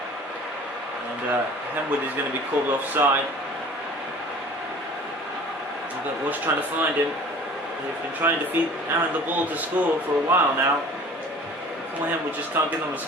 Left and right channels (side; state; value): both; normal; correlation 0.45